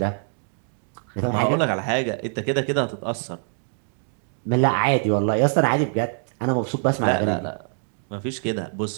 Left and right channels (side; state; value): left; silent; digital silence